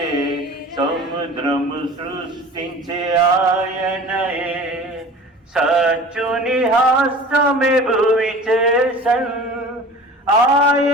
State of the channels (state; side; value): normal; both; correlation 0.40